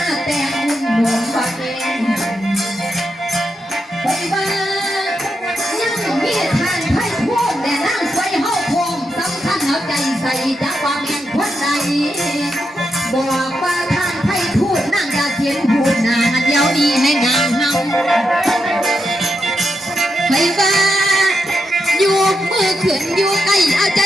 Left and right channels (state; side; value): normal; both; correlation 0.85